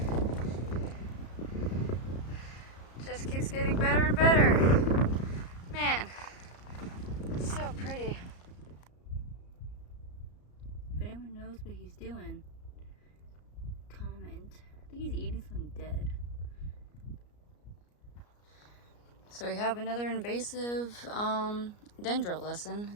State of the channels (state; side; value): late; right; 34 ms